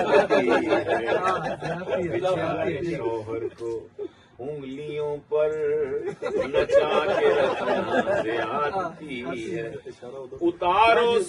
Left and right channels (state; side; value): identical; both; correlation 1.00